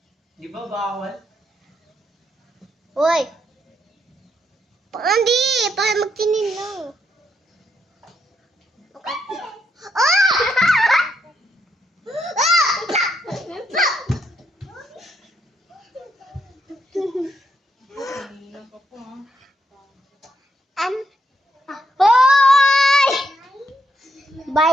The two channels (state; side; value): normal; both; correlation 0.78